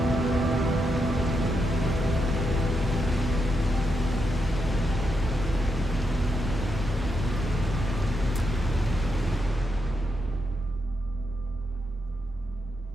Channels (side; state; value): both; normal; correlation 0.82